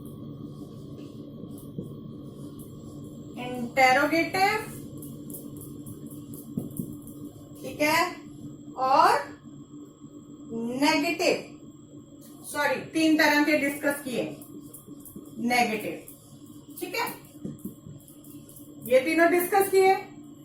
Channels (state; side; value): identical; both; correlation 1.00